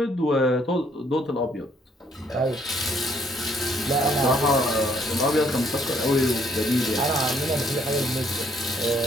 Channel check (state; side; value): normal; both; correlation 0.66